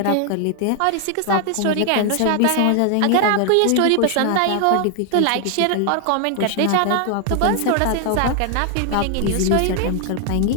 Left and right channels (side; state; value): both; different; correlation 0.00